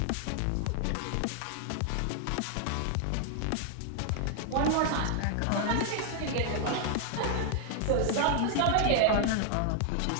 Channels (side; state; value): both; different; correlation 0.00